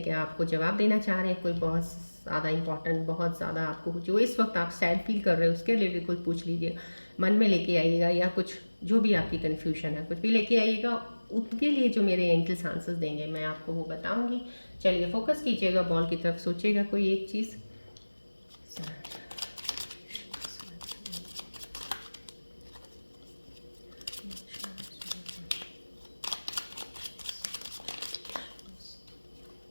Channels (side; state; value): both; inverted; correlation -1.00